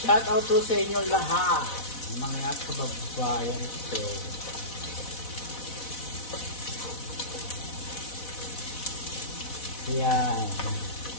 Shout out to sa inyo lahat, mga kababayan ko. Yan.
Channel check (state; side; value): late; right; 4.1 ms